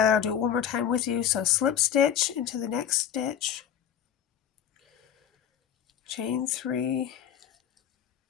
I'll do it one more time with you. So slip stitch into the next stitch, chain 3,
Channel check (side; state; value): right; quieter; 9.2 dB